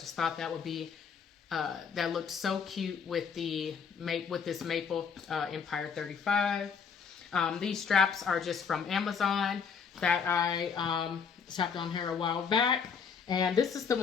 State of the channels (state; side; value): quieter; right; 6.3 dB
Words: thought that would be that looked so cute with this maple Empire 35. These straps are just from Amazon that I strapped on here a while back, and this is the